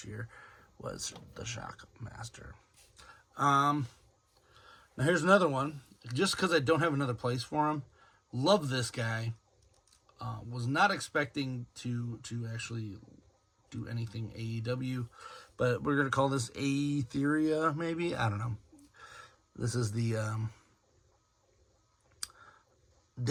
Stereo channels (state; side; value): identical; both; correlation 1.00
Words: year was the Shockmaster. Now here's another one. Just because I don't have another place for him. Love this guy. Was not expecting to actually do anything AEW, but we're going to call this Aetheria, maybe? I don't know. This is the